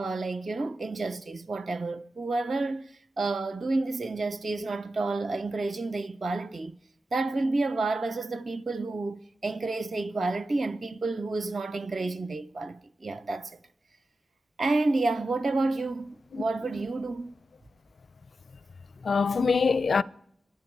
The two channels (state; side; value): normal; both; correlation 0.90